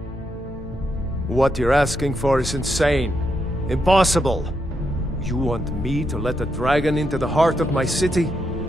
What you're asking for is insane. Impossible. You want me to let a dragon into the heart of my city,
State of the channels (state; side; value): normal; both; correlation 0.81